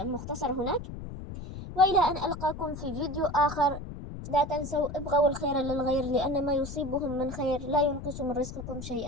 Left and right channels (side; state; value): left; noise; rumble, 10 dB below the sound